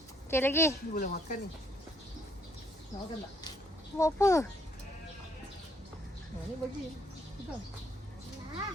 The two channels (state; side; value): normal; both; correlation 0.68